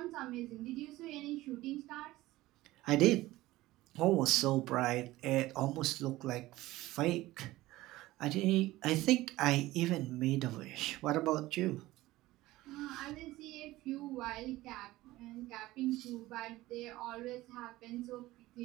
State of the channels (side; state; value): left; quieter; 17.6 dB